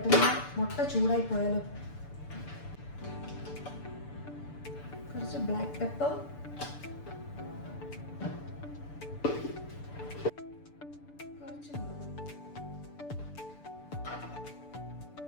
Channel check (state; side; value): late; right; 6.9 ms